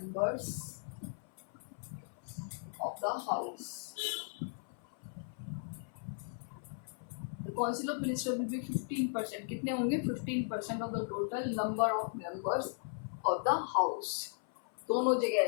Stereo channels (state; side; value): silent; right; 53 dB below the other